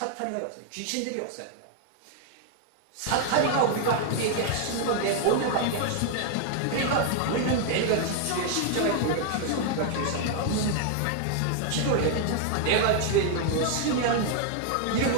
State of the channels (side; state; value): both; different; correlation 0.00